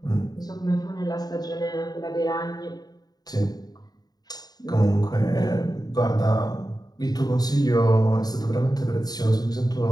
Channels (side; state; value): right; late; 0.19 ms